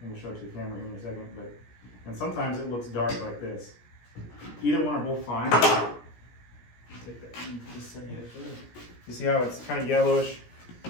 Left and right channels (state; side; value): late; right; 17 ms